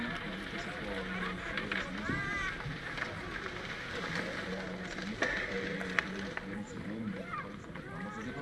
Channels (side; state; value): both; identical; correlation 1.00